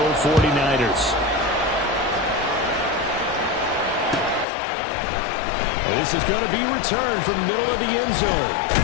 49ers. This is going to be returned from the middle of the end zone.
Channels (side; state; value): right; drops out; at 4.5 s